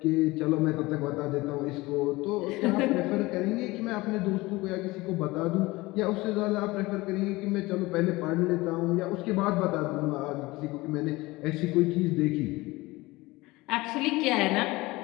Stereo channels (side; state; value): right; quieter; 21.0 dB